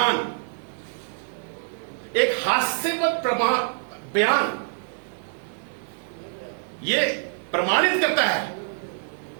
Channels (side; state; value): left; silent; 61 dB below the other